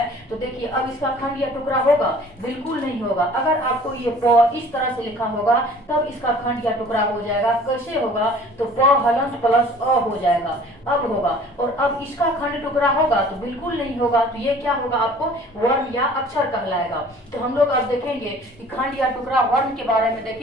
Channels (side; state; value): both; normal; correlation 0.49